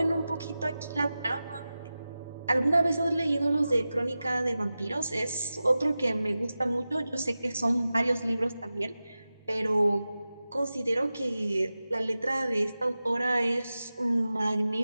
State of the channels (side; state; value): both; inverted; correlation -0.94